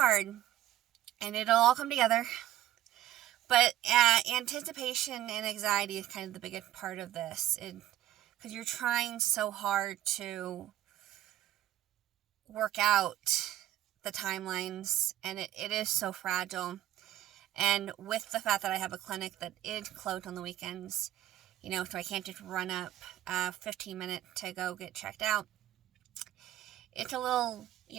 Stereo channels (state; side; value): quieter; left; 13.4 dB